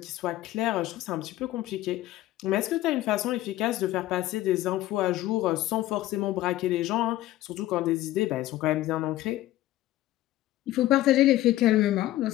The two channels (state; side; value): quieter; right; 15.3 dB